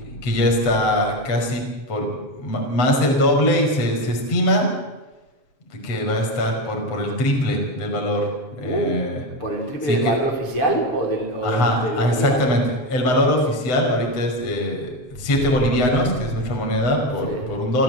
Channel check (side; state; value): right; late; 7.9 ms